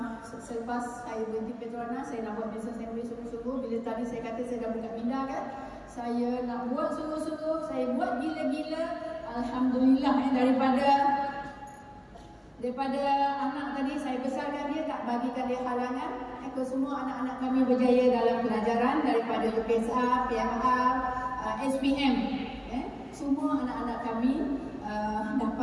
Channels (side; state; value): both; identical; correlation 1.00